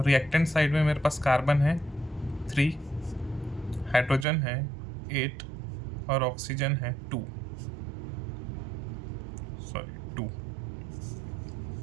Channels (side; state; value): left; drops out; at 4.2 s